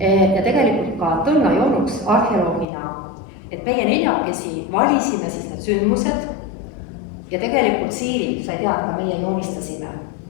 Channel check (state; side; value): drops out; right; at 2.7 s